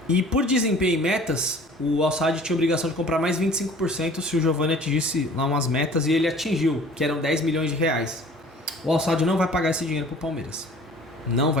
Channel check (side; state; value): both; normal; correlation 0.48